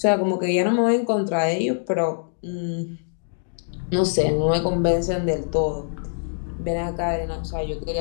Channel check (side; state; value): right; silent; digital silence